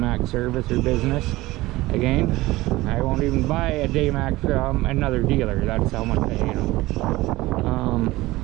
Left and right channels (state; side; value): quieter; left; 18.9 dB